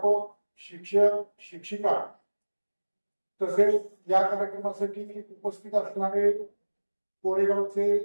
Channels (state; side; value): inverted; both; correlation -1.00